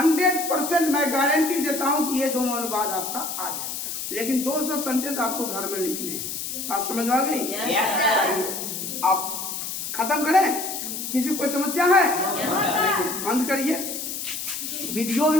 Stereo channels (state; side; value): noise; left; hiss, 5 dB below the sound